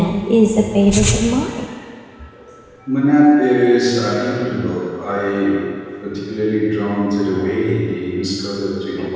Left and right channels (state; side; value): identical; both; correlation 1.00